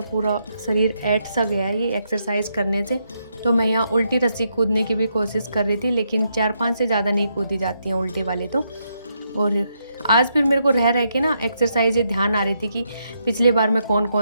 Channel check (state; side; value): inverted; both; correlation -0.79